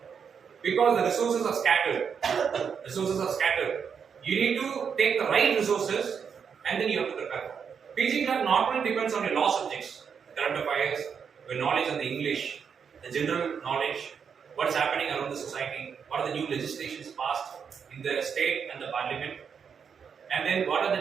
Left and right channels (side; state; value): left; quieter; 6.8 dB